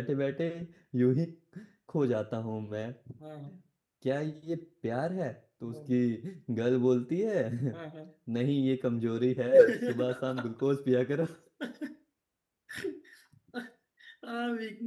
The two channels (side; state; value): both; identical; correlation 1.00